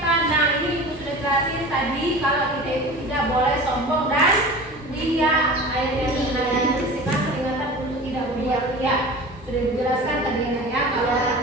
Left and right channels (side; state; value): both; normal; correlation 0.36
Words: kuliah. Sudah dijelaskan tadi anak ya, kalau